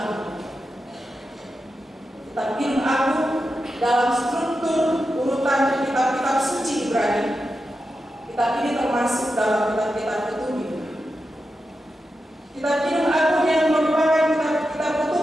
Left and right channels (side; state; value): both; normal; correlation 0.89